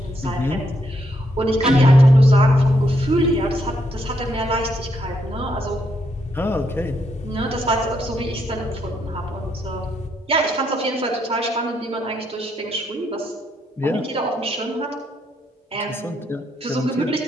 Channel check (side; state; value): both; normal; correlation 0.77